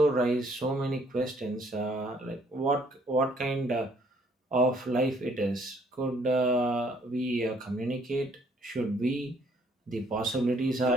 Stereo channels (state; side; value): normal; both; correlation 0.64